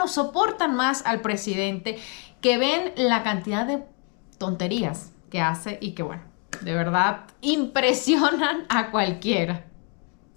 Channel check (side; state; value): right; quieter; 36.6 dB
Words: soportan más al presidente, que ven la cantidad de tonterías que hace y que, bueno, de verdad impresionan a cualquiera.